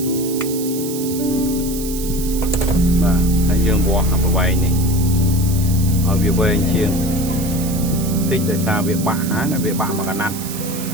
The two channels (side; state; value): right; noise; hiss, 10 dB below the sound